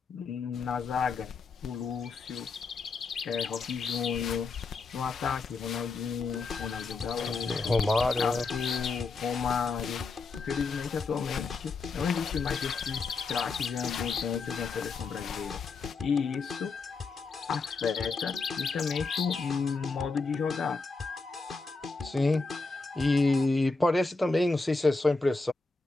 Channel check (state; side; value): quieter; right; 4.1 dB